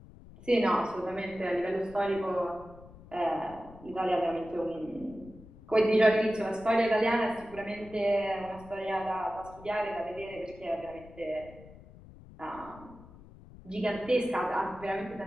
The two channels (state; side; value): noise; left; rumble, 20 dB below the sound